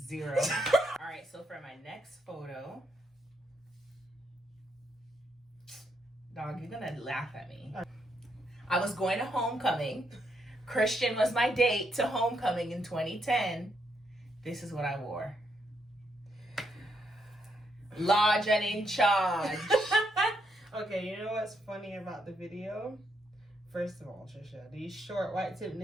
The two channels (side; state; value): both; normal; correlation 0.78